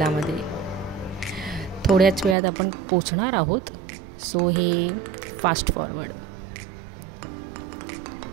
थोड्याच वेळात आपण पोचणार आहोत. सो हे फास्ट फॉरवर्ड.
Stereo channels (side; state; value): left; drops out; at 2.4 s